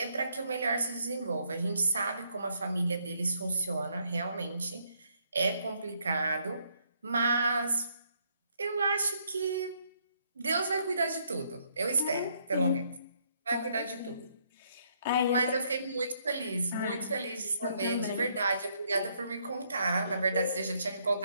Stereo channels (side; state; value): both; inverted; correlation -0.72